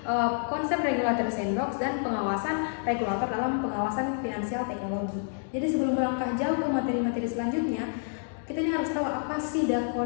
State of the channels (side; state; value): right; silent; digital silence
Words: konsep regulator sandbox dan pengawasan regulator dalam pengawasan finansial teknologi. Jadi sebelum melangkah jauh ke materi-materi selanjutnya, kita ini harus tahu apa sih